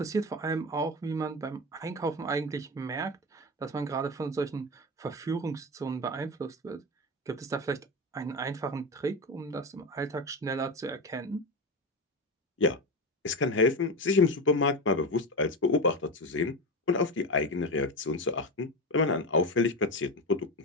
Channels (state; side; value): normal; both; correlation 0.20